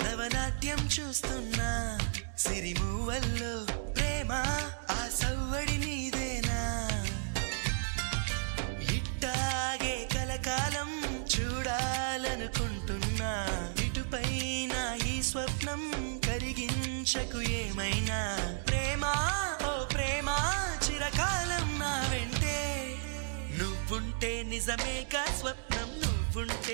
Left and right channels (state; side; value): silent; left; 56 dB below the other